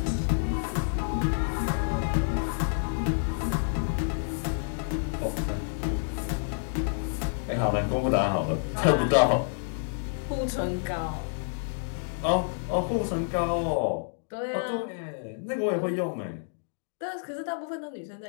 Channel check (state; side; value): silent; right; digital silence